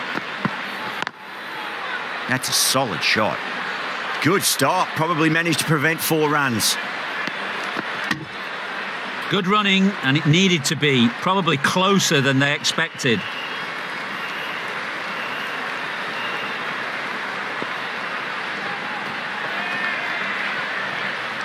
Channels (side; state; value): both; identical; correlation 1.00